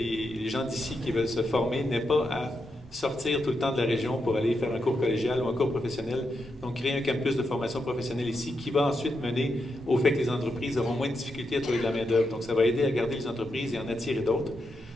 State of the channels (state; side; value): normal; both; correlation 0.84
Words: gens d'ici qui veulent se former n'aient pas à sortir tout le temps de la région pour aller faire un cours collégial ou un cours professionnel. Donc, créer un campus de formation professionnelle ici qui va ensuite mener au fait que les entreprises auront moins de difficultés à trouver de la main-d'œuvre. Donc, ça va aider à garder les entreprises et en attirer d'autres.